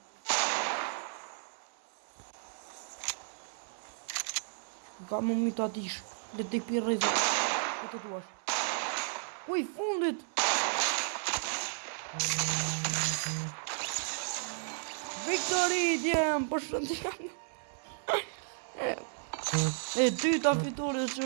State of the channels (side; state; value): left; silent; 55 dB below the other